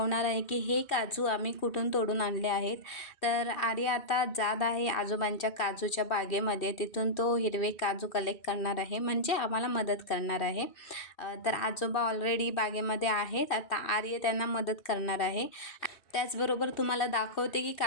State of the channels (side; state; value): right; late; 2.7 ms